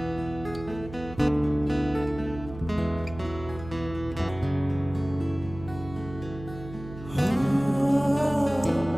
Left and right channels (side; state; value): right; noise; hum, 14 dB below the sound